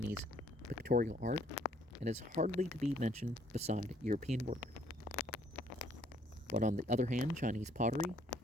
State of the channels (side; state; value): both; normal; correlation 0.64